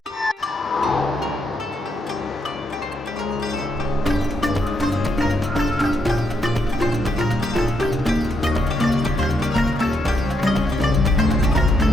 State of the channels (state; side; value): normal; both; correlation 0.78